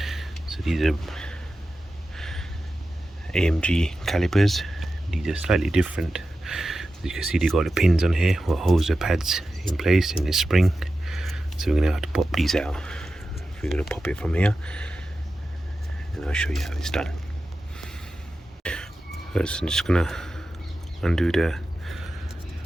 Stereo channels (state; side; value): normal; both; correlation 0.92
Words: So these are AMG calipers. These are slightly different. As you can see, they got the pins on here what holds the pads in place in this spring. So we're going to have to pop these out. We're going to pop it from here and I'll show you how it's done. First I'm just going to undo the